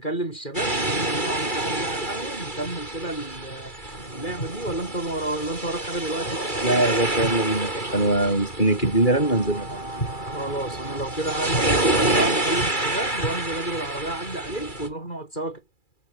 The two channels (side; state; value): right; late; 2.3 ms